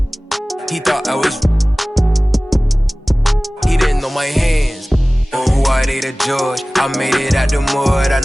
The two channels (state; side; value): normal; both; correlation 0.98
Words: he thought I was. He didn't know my hands. On who I date a judge, I made it out the mud. I